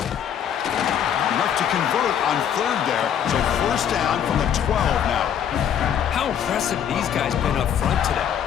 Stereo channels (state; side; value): quieter; right; 9.0 dB